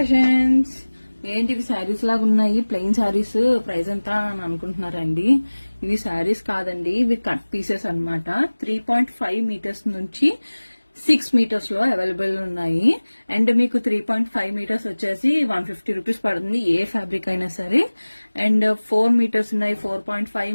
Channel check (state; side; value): inverted; both; correlation -1.00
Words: ఏంటి ఇవి శారీస్ లాగా ఉన్నాయి, ప్లెయిన్ శారీస్, ప్రైస్ ఎంత అని అనుకుంటున్నారండి. ఇవి శారీస్ కాదండి, ఇవి కట్ పీసెస్ అన్నమాట. 3.5 మీటర్స్ నుంచి 6 మీటర్స్ లో అవైలబుల్ ఉన్నాయి. అండ్ మీకు 3.5 మీటర్స్ వచ్చేసి 150 రూపీస్ పడుతుంది, ఏ ఫ్యాబ్రిక్ అయినా సరే. అండ్ 4 మీటర్స్ ఉన్నాయి, 4.5